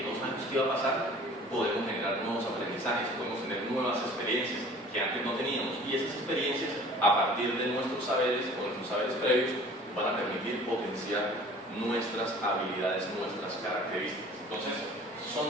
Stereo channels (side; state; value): both; normal; correlation 0.47